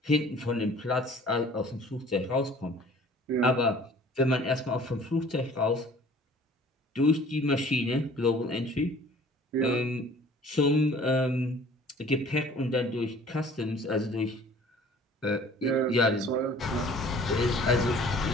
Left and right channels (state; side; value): normal; both; correlation 0.50